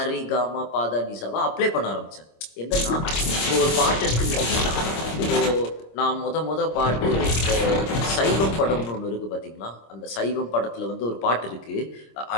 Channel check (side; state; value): right; late; 26 ms